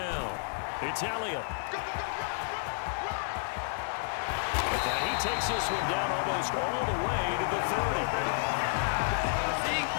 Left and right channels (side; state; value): right; silent; digital silence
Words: It's Elliott. And he takes this one down almost all the way to the 30.